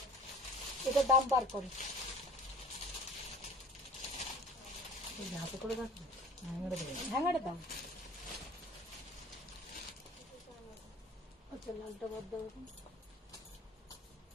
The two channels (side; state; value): both; normal; correlation 0.45